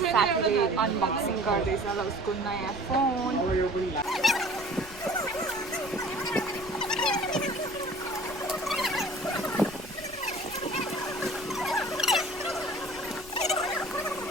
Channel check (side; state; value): left; noise; rumble, 19 dB below the sound